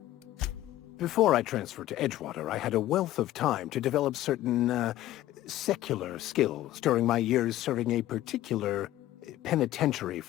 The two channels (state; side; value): quieter; right; 14.5 dB